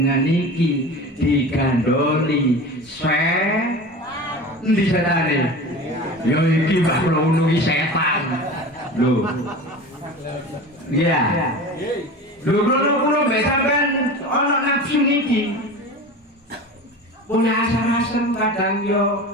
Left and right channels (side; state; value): both; normal; correlation 0.33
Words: iki digandoli endi setane? Ya iki Mbah kula nungi setan. Lho. Iya. Lho kula mbek sampean ana nafsu niki. Punya asar-asem kadang yo